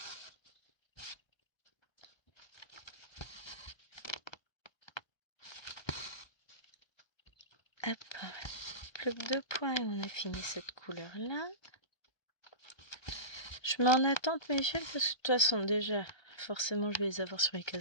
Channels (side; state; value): right; late; 1.3 ms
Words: Hop, plus que 2 points et on a fini cette couleur-là. Je mets en attente mes fils parce que de toute façon, déjà, forcément, je vais les avoir sur les